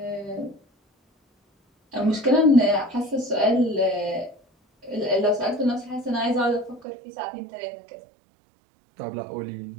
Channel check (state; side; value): drops out; left; at 6.9 s